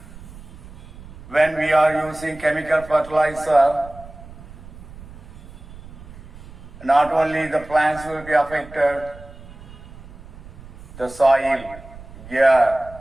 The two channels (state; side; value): noise; right; rumble, 17 dB below the sound